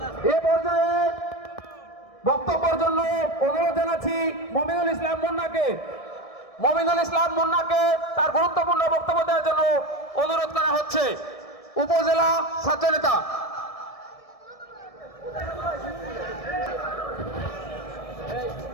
এ পর্যায়ে বক্তব্যের জন্য অনুরোধ জানাচ্ছি মমিনুল ইসলাম মুন্নাকে। মমিনুল ইসলাম মুন্নাকে তার গুরুত্বপূর্ণ বক্তব্য দেওয়ার জন্য অনুরোধ করা হচ্ছে। উপজেলা ছাত্রনেতা।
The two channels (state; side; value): late; right; 1.7 ms